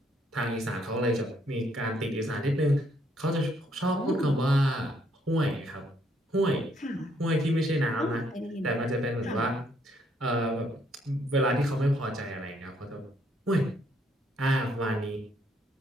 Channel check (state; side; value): normal; both; correlation 0.70